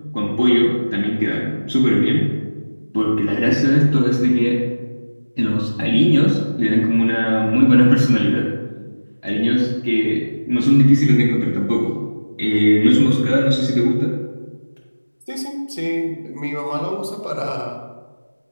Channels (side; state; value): both; inverted; correlation -1.00